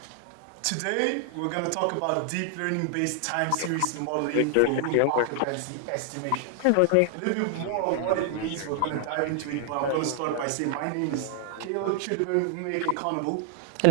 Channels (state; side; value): different; both; correlation 0.00